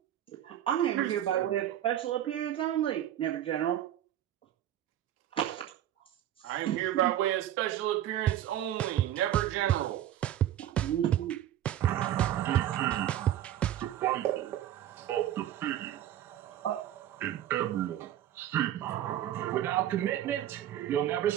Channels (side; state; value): left; quieter; 12.0 dB